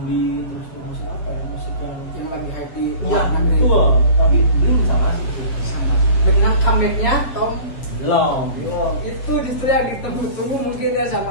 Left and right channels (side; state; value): right; late; 7.3 ms